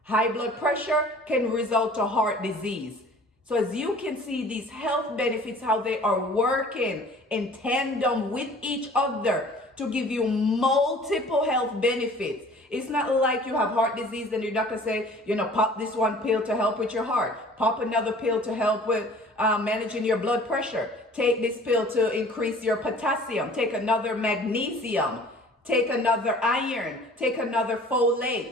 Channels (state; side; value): normal; both; correlation 0.48